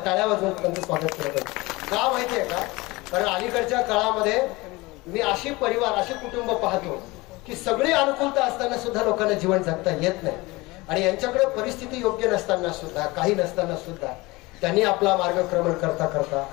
टाळ्या वाजवून त्यांचं स्वागत केलं पाहिजे. का माहितीये का, कारण अलीकडच्या काळामध्ये मी अशी परिवार अशी कुटुंब पाहतो की सगळी अनुकूलता असताना सुद्धा लोकांना जीवन जगता येत नाही आणि यांच्याकडे परिस्थिती योग्य नसताना सुद्धा, काही नसताना सुद्धा त्यांनी आपला मार्गक्रमण करता करता,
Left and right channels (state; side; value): quieter; right; 22.4 dB